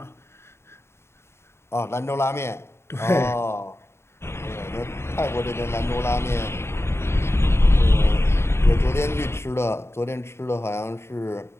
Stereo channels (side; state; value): right; late; 0.12 ms